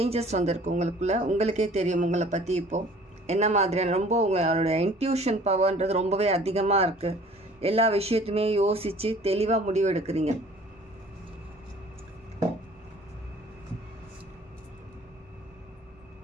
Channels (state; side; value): normal; both; correlation 0.51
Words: வந்திருக்கு உங்களுக்குள்ள. உங்களுக்கே தெரியும் உங்களை பற்றி இப்போது என்ன மாதிரியான ரொம்ப உங்களுடைய இன்ட்யூஷன் பவர்ன்றது ரொம்பவே அதிகமாக இருக்குது. எல்லா விஷயத்தையுமே யோசித்து தெளிவாக முடிவெடுக்கிறீங்க.